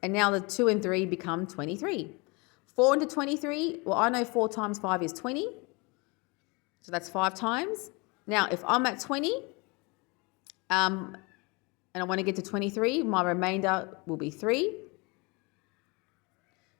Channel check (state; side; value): quieter; right; 28.0 dB